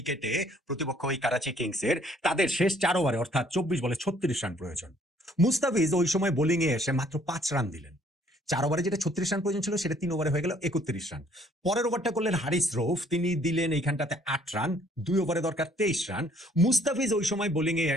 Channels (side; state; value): both; normal; correlation 0.62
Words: প্রতিপক্ষ ওই করাচি কিংসের, তাদের শেষ 4 ওভারে অর্থাৎ 24 বলে 36 রান প্রয়োজন। মুস্তাফিজ ওই সময় বোলিং এ এসে মাত্র 5 রান দিলেন। 4 ওভারে যেটা 36 রান প্রয়োজন ছিল, সেটা 3 ওভারে হয়ে গেল 31 রান। পরের ওভারটা করলেন হারিস রৌফ, তিনি দিলেন এইখানটাতে 8 রান, 2 ওভারে দরকার 23 রান। মুস্তাফিজ ওই সময় বোলিং এ